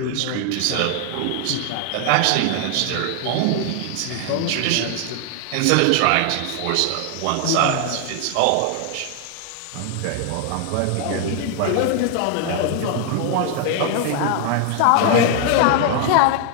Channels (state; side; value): different; both; correlation 0.00